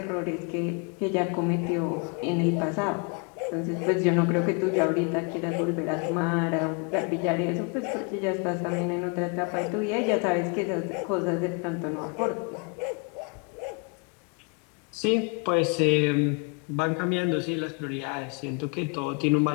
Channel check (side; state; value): right; quieter; 33.9 dB